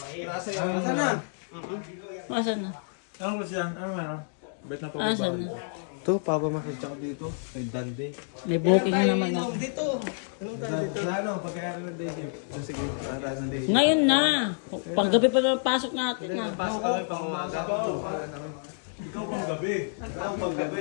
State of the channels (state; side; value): silent; right; digital silence